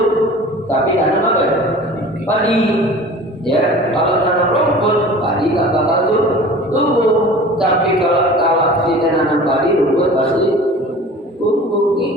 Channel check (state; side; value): normal; both; correlation 0.42